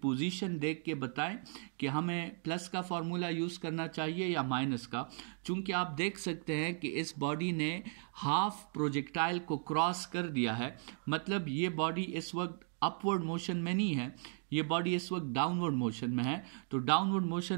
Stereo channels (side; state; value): left; silent; 54 dB below the other